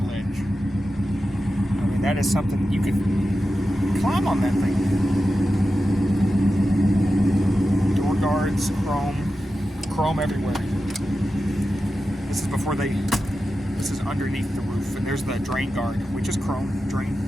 ledge. I mean, that is something you could climb on that thing. Door guards, chrome everywhere. This is before this is underneath the roof, and there's the drain guard, which is chrome drain.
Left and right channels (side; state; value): both; normal; correlation 0.92